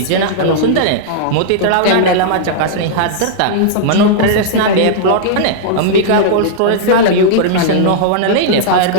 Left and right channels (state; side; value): different; both; correlation -0.02